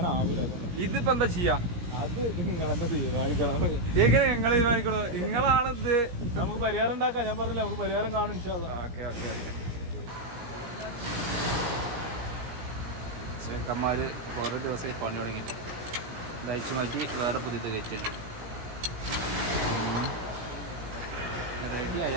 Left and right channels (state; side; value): late; left; 17 ms